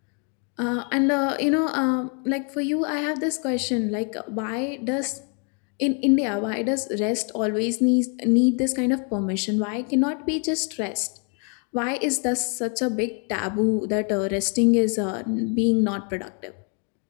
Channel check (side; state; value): right; quieter; 38.7 dB